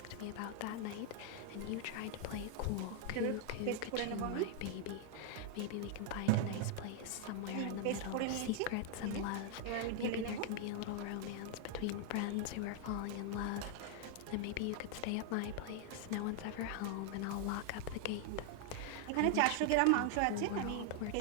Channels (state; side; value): different; both; correlation 0.00